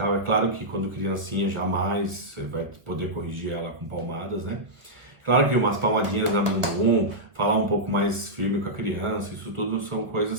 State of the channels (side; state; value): left; late; 1.0 ms